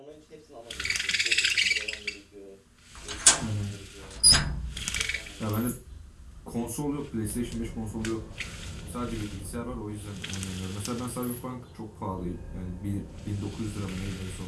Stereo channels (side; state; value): both; identical; correlation 1.00